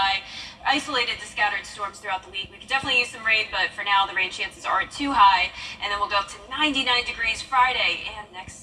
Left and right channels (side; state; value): both; identical; correlation 1.00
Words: Isolated to scattered storms throughout the week. We could definitely use some rain, but for now, the rain chances aren't too high. And then we'll go up to 99 degrees Friday and next